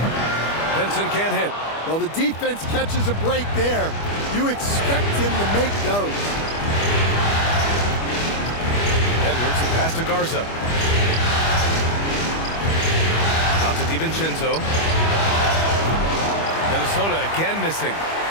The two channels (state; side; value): late; right; 25 ms